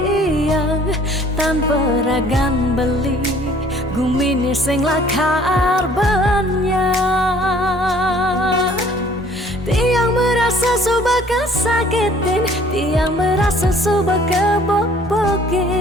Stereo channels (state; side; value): normal; both; correlation 0.55